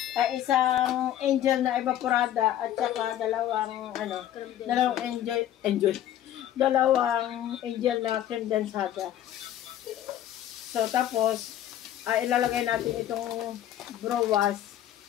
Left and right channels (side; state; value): right; quieter; 11.8 dB